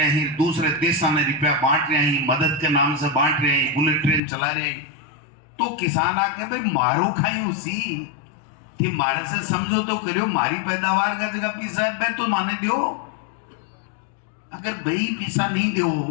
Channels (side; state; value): right; drops out; at 4.2 s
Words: हैं, दूसरे देशों में रुपया बांट रहे हैं, मदद के नाम से बांट रहे हैं, बुलेट ट्रेन चला रहे हैं। तो किसान आके भाई मारो खाई उसी थी, मारे से समझो तो करियो, मारी पैदावार का जगह पीसा है तो माने दियो। अगर भाई पीसा नहीं